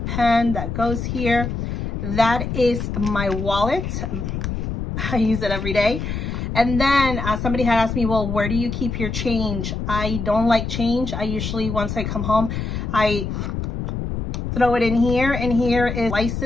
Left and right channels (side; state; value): left; noise; rumble, 4 dB below the sound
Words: that goes here. That is my wallet. I use it every day. And then somebody had asked me, well, where do you keep your change? I don't like change. I usually, once I come home, I throw it in here. And here is